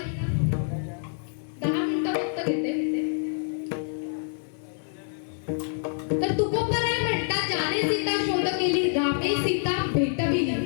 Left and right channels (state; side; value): silent; right; 60 dB below the other